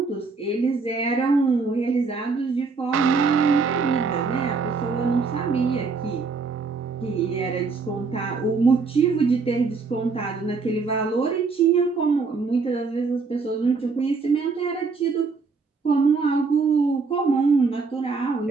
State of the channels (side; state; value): left; quieter; 4.6 dB